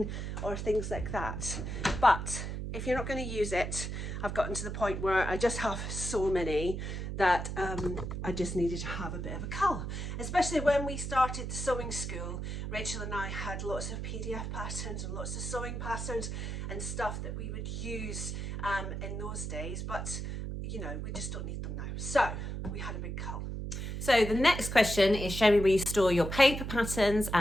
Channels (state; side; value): noise; right; hum, 4 dB below the sound